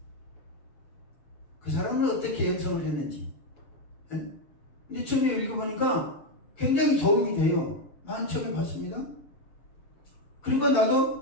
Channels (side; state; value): right; late; 7.0 ms